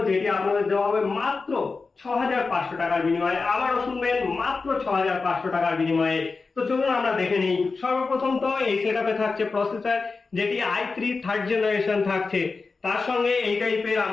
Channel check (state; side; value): quieter; right; 4.2 dB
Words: যেটি আপনাদের দেওয়া হবে মাত্র 6500 টাকার বিনিময়ে। আবারও শুনবেন, মাত্র 6500 টাকার বিনিময়ে। তো চলুন আমরা দেখে নিই। সর্বপ্রথম তো এই সেটআপে থাকছে প্রসেসর, যেটি i3 থার্ড জেনারেশন থাকছে। তার সঙ্গে এই টাইপের